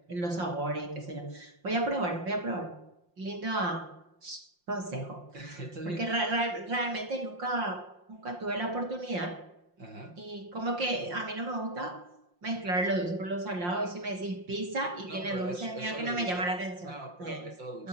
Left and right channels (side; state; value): left; late; 5.7 ms